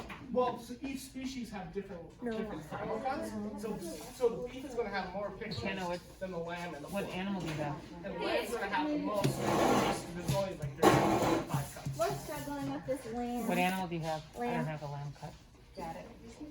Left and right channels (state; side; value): identical; both; correlation 1.00